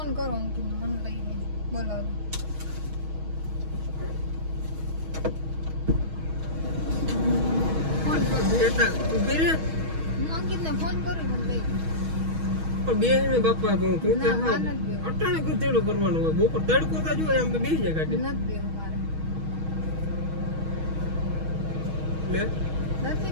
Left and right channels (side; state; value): left; late; 6.3 ms